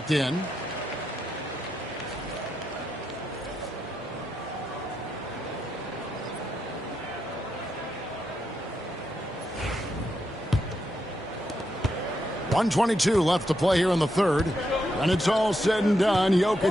in. .122 left to play here in the third. When it's all said and done,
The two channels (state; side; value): normal; both; correlation 0.83